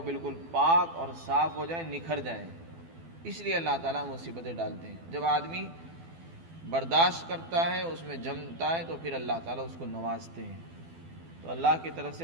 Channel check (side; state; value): left; late; 12 ms